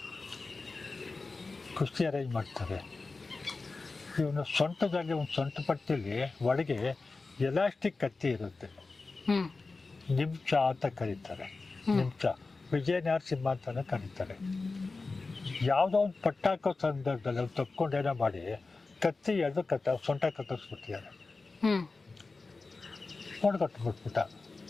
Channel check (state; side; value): quieter; right; 3.8 dB